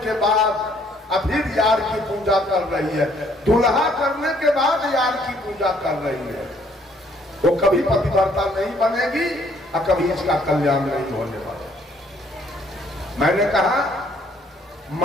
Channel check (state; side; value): normal; both; correlation 0.64